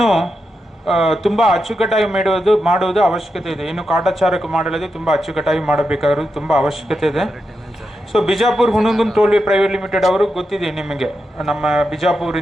ತುಂಬ ಅಚ್ಚುಕಟ್ಟಾಗಿ ಮಾಡುವುದು ಅವಶ್ಯಕತೆ ಇದೆ. ಇನ್ನು ಕಾಟಾಚಾರಕ್ಕೆ ಮಾಡಲಾದೆ ತುಂಬ ಅಚ್ಚುಕಟ್ಟಾಗಿ ಮಾಡಬೇಕಾಗಿರೋದು ತುಂಬ ಅವಶ್ಯಕತೆ ಇದೆ. So Bijapur Hungund ಟೋಲ್ವೇ private limited ಅವರು ಗೊತ್ತಿದೆ ನಿಮಗೆ, ನಮ್ಮ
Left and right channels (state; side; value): normal; both; correlation 0.87